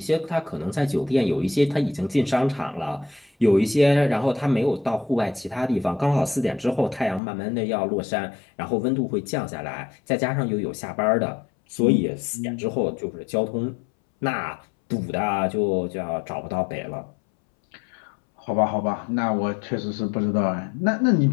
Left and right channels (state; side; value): drops out; right; at 7.2 s